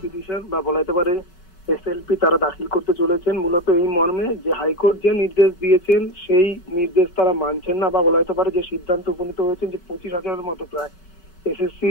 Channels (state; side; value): late; right; 5.3 ms